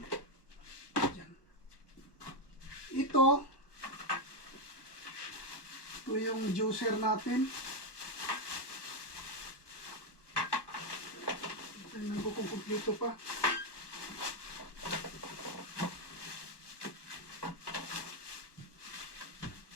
Ito yung juicer natin. Tingnan ko kung kumpleto pa.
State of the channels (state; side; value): late; right; 1.2 ms